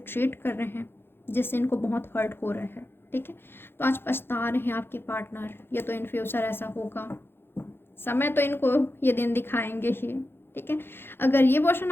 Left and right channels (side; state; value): right; late; 0.11 ms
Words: कर रहे हैं जिससे इनको बहुत हर्ट हो रहा है। ठीक है, तो आज पछता रहे हैं आपके पार्टनर। ये तो इन फ्यूचर ऐसा होगा, समय तो इनको ये दिन दिखाएंगे ही। ठीक है, अगर ये पर्सन